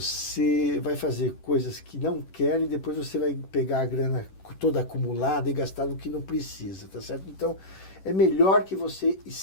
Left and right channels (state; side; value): late; right; 11 ms